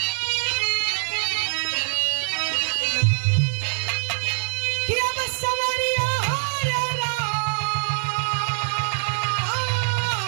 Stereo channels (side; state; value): left; silent; digital silence